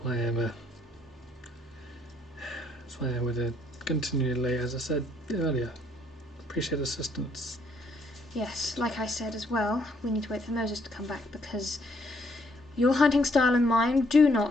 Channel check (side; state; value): both; normal; correlation 0.69